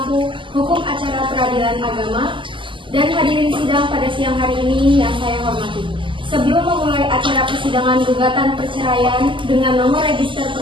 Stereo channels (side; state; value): left; late; 0.25 ms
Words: Hukum Acara Peradilan Agama, dan hadirin sidang pada siang hari ini yang saya hormati. Sebelum memulai acara persidangan gugatan perceraian dengan nomor register